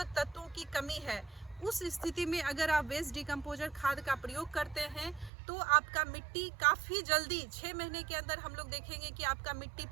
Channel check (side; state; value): left; drops out; at 5.3 s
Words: तत्वों की कमी है, उस स्थिति में अगर आप वेस्ट डिकम्पोजर खाद का प्रयोग करते हैं तो आपका मिट्टी काफ़ी जल्दी 6 महीने के अंदर हम लोग देखेंगे कि आपका मिट्टी